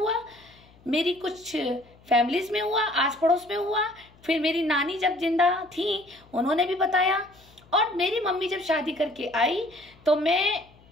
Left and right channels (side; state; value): left; noise; hum, 28 dB below the sound